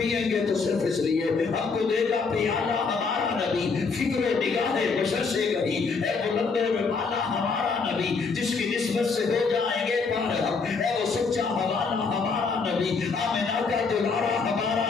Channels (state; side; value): quieter; right; 4.8 dB